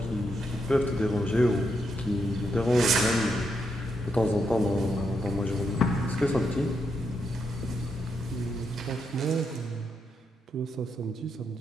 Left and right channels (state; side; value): normal; both; correlation 0.81